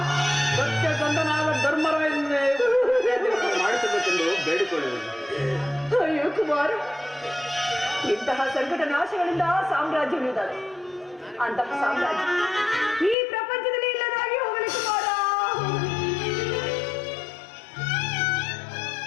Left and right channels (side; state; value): right; drops out; at 13.2 s